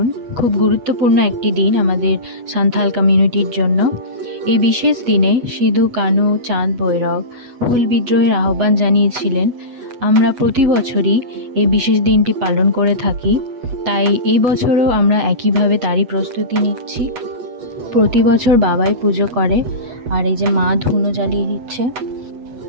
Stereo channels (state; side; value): late; left; 8.2 ms